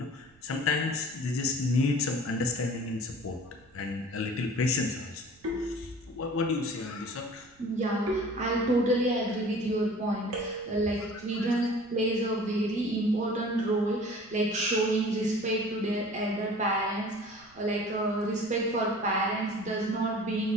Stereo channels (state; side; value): noise; right; rumble, 29 dB below the sound